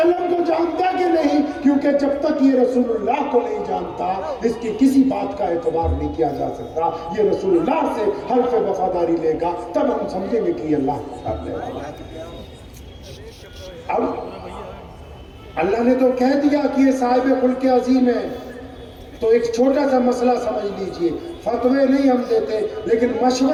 کو جانتا کہ نہیں، کیونکہ جب تک یہ رسول اللہ کو نہیں جانتا اس کی کسی بات کا اعتبار نہیں کیا جا سکتا، یہ رسول اللہ سے حلف وفاداری لے گا تب ہم سمجھیں گے کہ یہ اللہ کے ساتھ لے گا۔ اب اللہ نے تو کہہ دیا کہ یہ صاحب خلق عظیم ہے، تو ایک چھوٹا سا مسئلہ سمجھ لیجئے، فتوے نہیں ہم دیتے لیکن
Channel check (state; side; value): identical; both; correlation 1.00